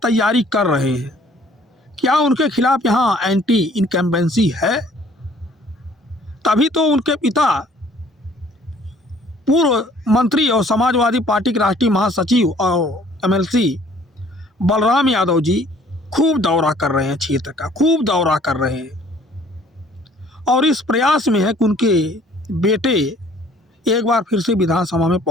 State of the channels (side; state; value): both; normal; correlation 0.57